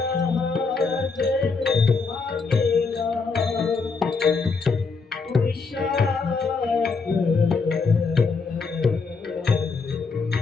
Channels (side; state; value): right; quieter; 4.6 dB